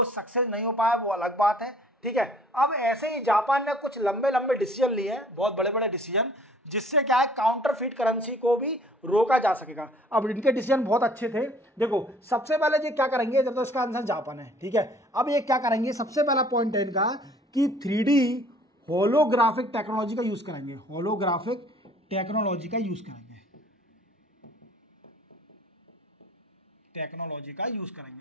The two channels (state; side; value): normal; both; correlation 0.55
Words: सक्सेस नहीं हो पाया, वो अलग बात है, ठीक है। अब ऐसे ही जापान ने कुछ लंबे लंबे डिसीजन लिए हैं, बहुत बड़े बड़े डिसीजन, जिससे क्या है काउंटरफीट करेंसी को भी रोका जा सकेगा। अब इनके डिसीजन बहुत अच्छे थे। देखो सबसे पहले ये क्या करेंगे, जब तो इसका आंसर जापान है, ठीक है। अब ये क्या करेंगे, सबसे पहला पॉइंट है इनका कि 3D होलोग्राफिक टेक्नोलॉजी का यूज करेंगे, होलोग्राफिक टेक्नोलॉजी का यूज करेंगे, टेक्नोलॉजी का यूज